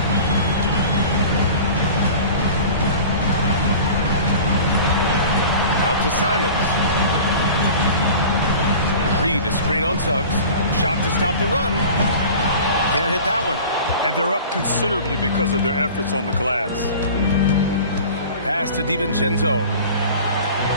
Out to Simons. Reed, a screen on Suggs. Shot to stop the run. Can't hit that one. And they're up considerably because of their efforts on the glass. Pass to DiVincenzo.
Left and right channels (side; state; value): both; inverted; correlation -0.39